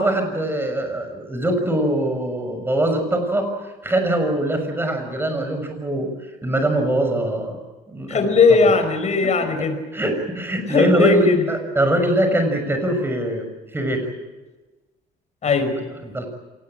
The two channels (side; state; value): both; normal; correlation 0.53